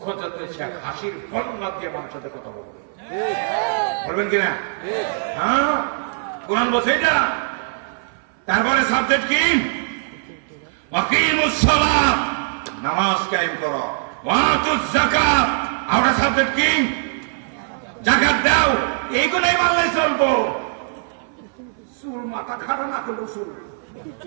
যত হাসির বন্যা দিয়ে মানুষের সাথে কথা বলবে, বলবেন কিনা? হ্যাঁ, কোরআন বলছে এটা। তারপরে সাবজেক্ট কি? ওয়াকিমুস সালাত, নামাজ কায়েম করো, ওয়াতুজ যাকাত, আর সাবজেক্ট কি? যাকাত দাও। এইগুলাই মানলে চলবো। চুল মাথা খারাপ না করলো চুল,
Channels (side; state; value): left; silent; 61 dB below the other